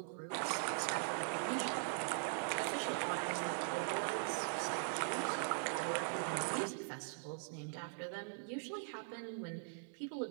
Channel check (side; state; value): left; silent; 50 dB below the other